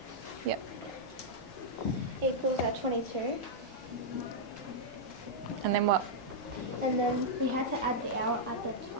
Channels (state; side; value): noise; right; hum, 28 dB below the sound